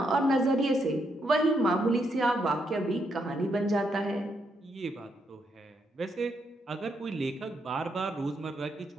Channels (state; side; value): normal; both; correlation 0.78